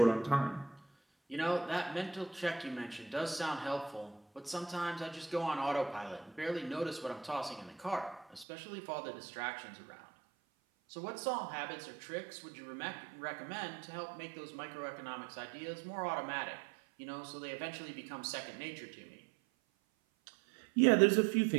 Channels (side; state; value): left; drops out; at 8.5 s